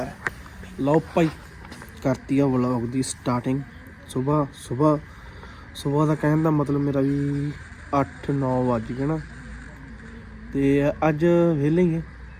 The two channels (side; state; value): both; identical; correlation 1.00